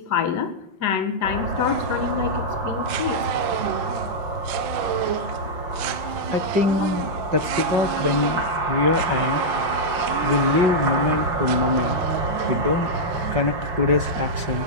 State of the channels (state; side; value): late; left; 6.1 ms